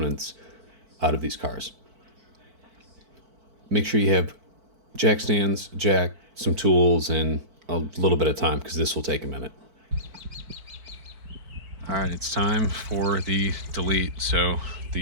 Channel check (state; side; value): late; left; 4.5 ms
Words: out of these cars. Make sure you have jack stands, jack, some tools, and a little bit of time because this will take a minute. All right, it's time for the delete. So